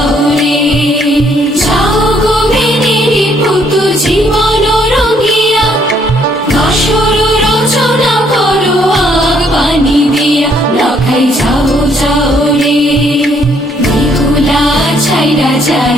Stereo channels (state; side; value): normal; both; correlation 0.67